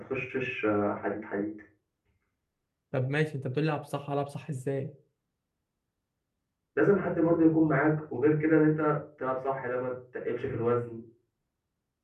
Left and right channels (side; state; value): both; identical; correlation 1.00